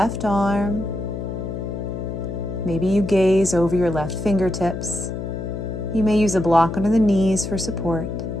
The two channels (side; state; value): left; noise; hum, 5 dB below the sound